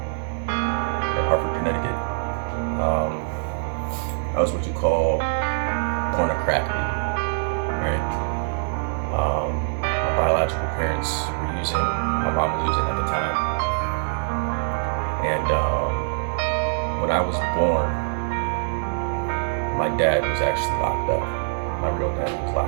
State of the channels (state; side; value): silent; left; 63 dB below the other